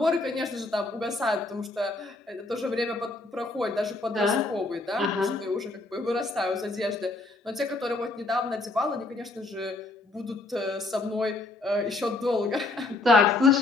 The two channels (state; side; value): quieter; right; 3.1 dB